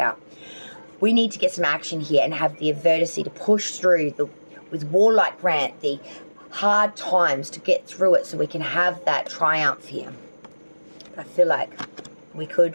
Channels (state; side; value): inverted; both; correlation -1.00